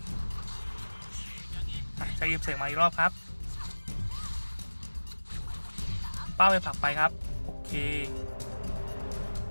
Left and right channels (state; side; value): inverted; both; correlation -1.00